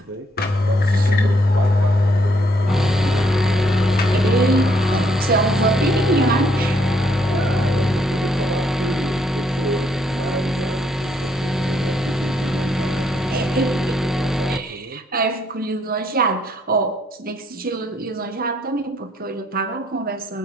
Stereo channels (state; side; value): normal; both; correlation 0.71